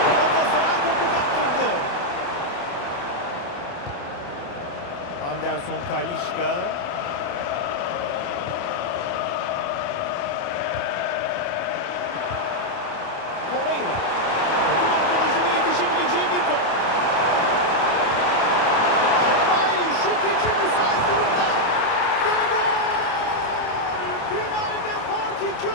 Galatasaray topu kaptırdı. Anderson Talisca. Torreira. Takım arkadaşının yetişebileceği bir top. Şalay şut için müsait durumda. Ve gol! Finalde fark 2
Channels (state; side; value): late; right; 28 ms